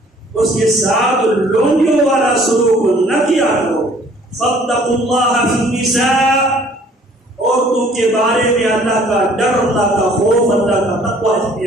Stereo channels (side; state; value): both; normal; correlation 0.56